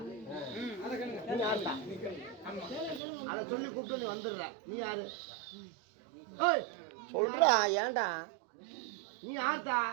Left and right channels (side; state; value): left; drops out; at 3.0 s